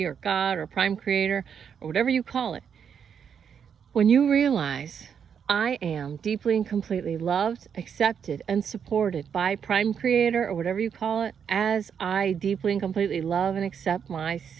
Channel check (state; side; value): quieter; left; 7.5 dB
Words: or God, or prime creator, or whatever you call it. When you realize, I am deeply and completely loved, accepted, and supported by Prime Creator, or whatever you call it, as I deeply and completely love and accept